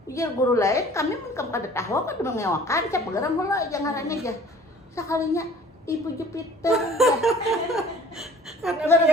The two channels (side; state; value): both; normal; correlation 0.50